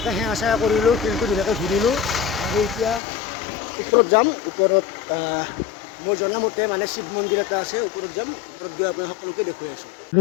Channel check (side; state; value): right; drops out; at 3.0 s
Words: সেৱা চেৱা কৰিলোঁ শিলটো ধুনীয়াকৈ ঘূৰিলোঁ আৰু এতিয়া ওপৰত যাম ওপৰত মই জনামতে মানে শিৱ মন্দিৰ এটা আছে ওপৰত যাম ওপৰত গৈ আপোনাৰ সকলোকে দেখুৱাই আছোঁ আৰু